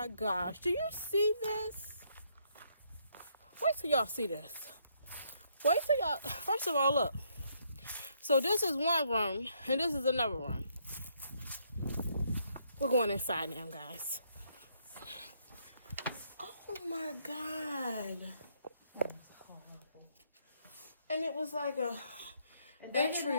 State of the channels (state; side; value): inverted; both; correlation -0.72